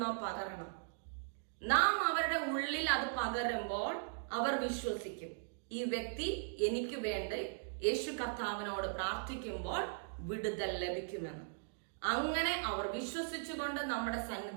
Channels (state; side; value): silent; left; digital silence